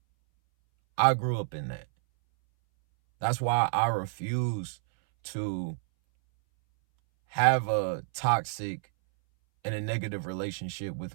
I grew up in that. That's why I refuse to have a toxic and a negative relationship with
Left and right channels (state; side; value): silent; left; 59 dB below the other